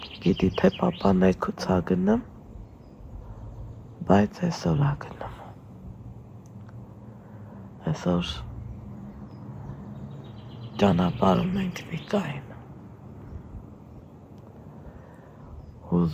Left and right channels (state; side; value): identical; both; correlation 1.00